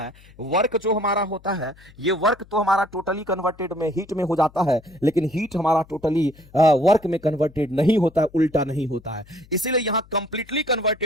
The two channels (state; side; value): noise; left; hum, 25 dB below the sound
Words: वर्क जो हमारा होता है, ये वर्क तो हमारा टोटली कन्वर्टेड में हीट में हो जाता है, लेकिन हीट हमारा टोटली वर्क में कन्वर्टेड नहीं होता है, उल्टा नहीं होता है। इसीलिए यहां कंप्लीटली